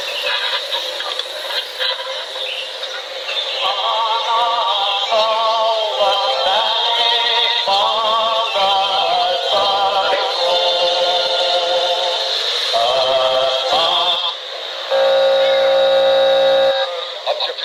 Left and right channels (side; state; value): both; identical; correlation 1.00